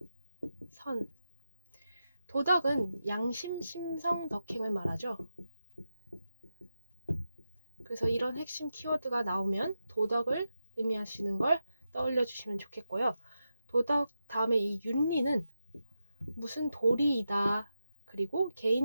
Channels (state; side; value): inverted; both; correlation -0.89